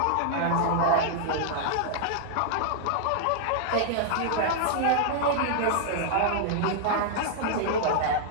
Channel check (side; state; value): both; different; correlation -0.01